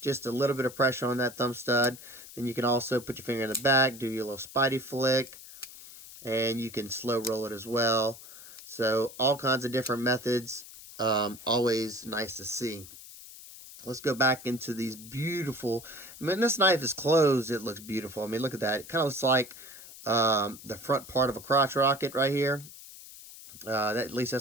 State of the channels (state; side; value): noise; left; hiss, 16 dB below the sound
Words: a little bit of pressure on that thumb stud. Then you can also put your finger in the back, do your little spidey flick, and you can slow roll it as well. So all kinds of different methods, always nice to see. Let's go back into these beautiful, I mean, this knife is closed, it looks beautiful. I mean, look at that. It kind of looks like the front part of a crotch rocket right here. At least